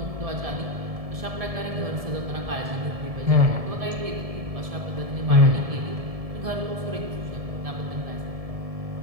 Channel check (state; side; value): late; left; 1.7 ms